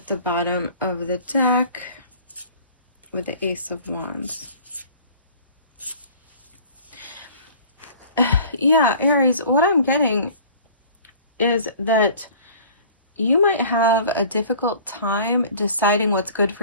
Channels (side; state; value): both; inverted; correlation -0.47